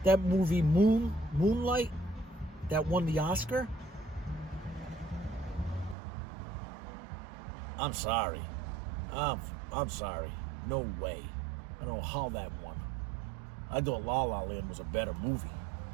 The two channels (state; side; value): drops out; left; at 6.0 s